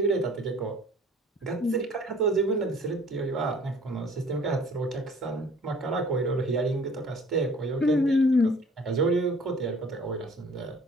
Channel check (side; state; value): both; normal; correlation 0.52